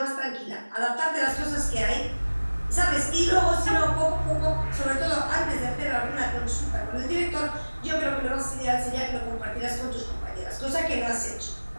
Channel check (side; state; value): both; inverted; correlation -1.00